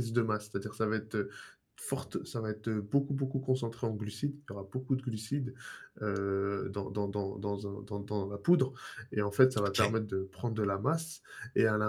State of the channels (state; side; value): identical; both; correlation 1.00